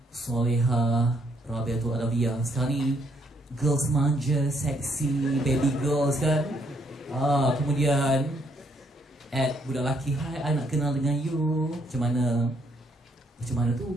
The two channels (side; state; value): both; normal; correlation 0.71